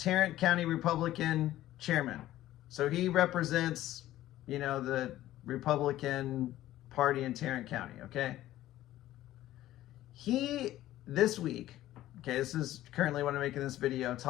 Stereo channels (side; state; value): right; quieter; 14.4 dB